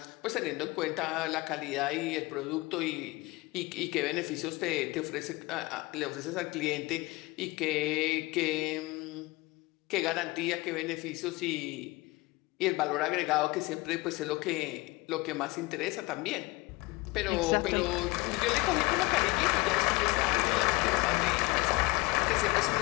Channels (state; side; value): quieter; right; 23.1 dB